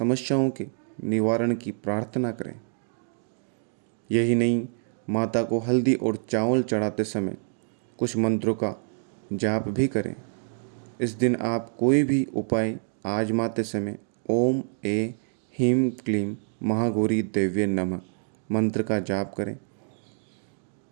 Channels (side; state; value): left; silent; digital silence